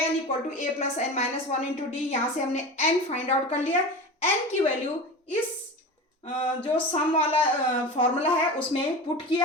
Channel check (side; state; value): both; normal; correlation 0.30